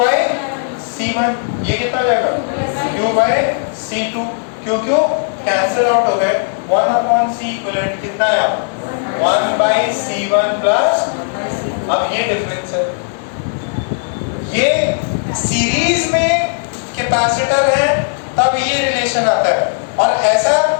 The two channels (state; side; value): silent; right; 69 dB below the other